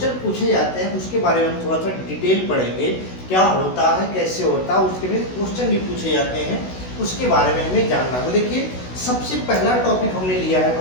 पूछे जाते हैं, उसके बारे में हम थोड़ा सा डिटेल पढ़ेंगे, क्या होता है, कैसे होता है, उसके में क्वेश्चन भी पूछे जाते हैं, उसके बारे में हमें जानना है। तो देखिए सबसे पहला टॉपिक हमने लिया है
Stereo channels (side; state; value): right; late; 16 ms